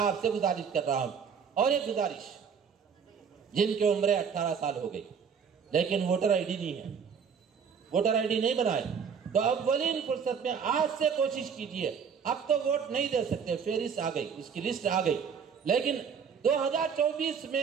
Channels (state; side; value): quieter; left; 6.7 dB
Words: سے گزارش کر رہا ہوں، اور ایک گزارش، جن کی عمریں 18 سال ہو گئی لیکن ووٹر آئی ڈی نہیں ہے، ووٹر آئی ڈی نہیں بنائے، تو اولین فرصت میں آج سے کوشش کیجئے۔ اب تو ووٹ نہیں دے سکتے، فہرست آ گئی، اس کی لسٹ آ گئی، لیکن 2024